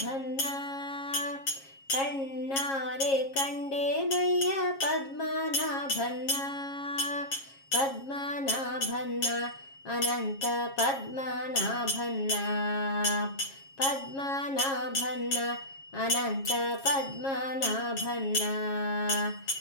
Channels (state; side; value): late; right; 7.3 ms